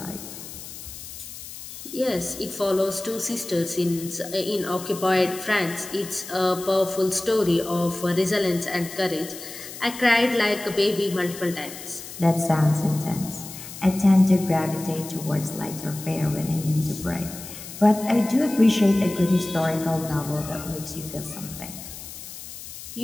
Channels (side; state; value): left; noise; hiss, 12 dB below the sound